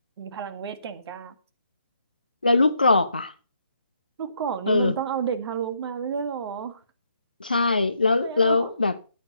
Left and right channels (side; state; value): both; inverted; correlation -0.74